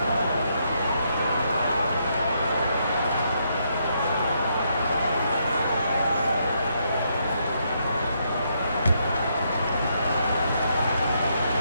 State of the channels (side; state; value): both; inverted; correlation -0.76